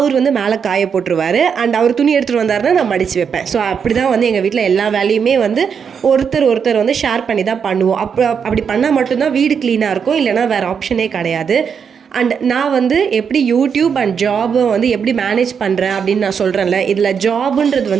மேலே காய போட்டுருவார். அண்ட் அவர் துணி எடுத்துகிட்டு வந்தாருன்னா நான் மடித்து வைப்பேன். ஸோ அப்படி தான் எங்கள் வீட்டில் எல்லா வேலையுமே ஒருத்தர் ஷேர் பண்ணி தான் பண்ணுவோம். அப்படி பண்ணால் மட்டும்தான் வீடு க்ளீனாக இருக்கும், இல்லைனா வேறு ஆப்ஷனே கிடையாது. அண்ட் நான் எப்படி யூடியூப் அண்ட் ஜாபை எப்படி மேனேஜ் பண்ணுறேன் அப்படின்னு நான் சொல்கிறேன்ல, இதில்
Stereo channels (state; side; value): quieter; left; 6.8 dB